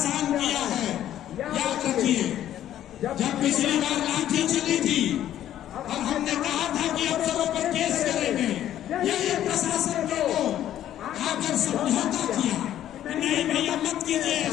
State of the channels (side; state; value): right; quieter; 11.8 dB